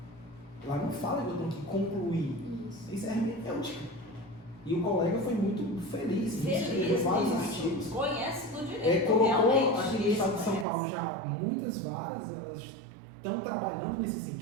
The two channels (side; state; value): left; drops out; at 10.7 s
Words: Lá não fala que eu tenho que concluir. Isso. Isso é hermenêutica. E o colega foi muito feliz. Escreveu vários artigos. Conhece do direito. Colocou realmente, aqui no isso estado de São conhece. Paulo já muitas varas, elas estão trabalhando nesse